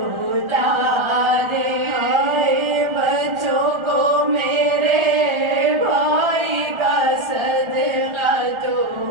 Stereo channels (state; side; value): late; left; 1.4 ms